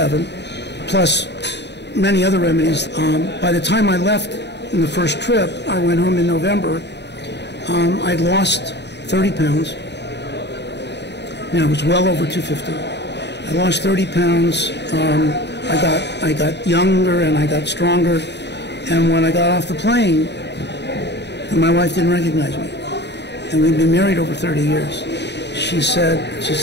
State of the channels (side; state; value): right; late; 0.50 ms